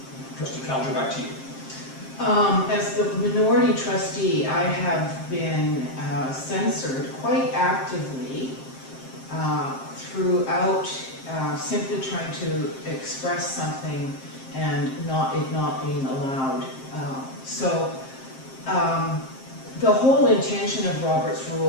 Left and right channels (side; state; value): right; late; 7.6 ms